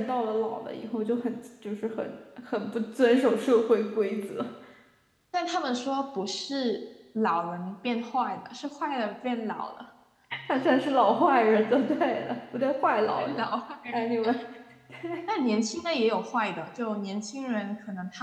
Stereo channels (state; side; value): identical; both; correlation 1.00